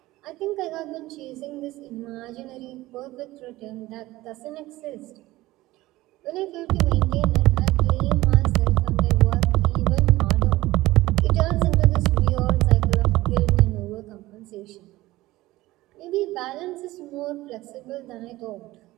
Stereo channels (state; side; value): quieter; left; 17.9 dB